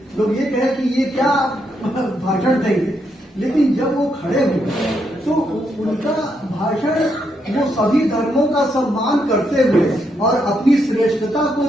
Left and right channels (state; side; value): normal; both; correlation 0.78